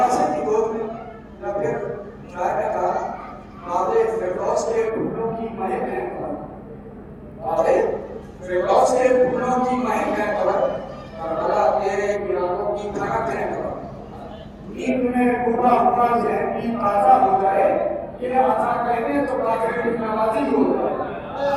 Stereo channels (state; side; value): identical; both; correlation 1.00